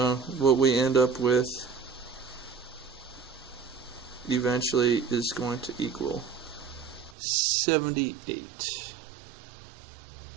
what we end up with eventually is going to equal 78.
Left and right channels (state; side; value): drops out; left; at 7.2 s